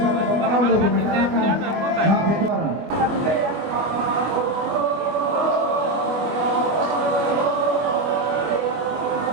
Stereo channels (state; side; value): late; left; 24 ms